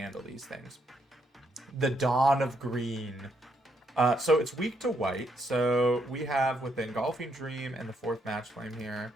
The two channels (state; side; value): normal; both; correlation 0.75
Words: these things. The Dawn of Green. So it's weak to white. So we have with the Engulfing Dream and the 4th Match Flame here.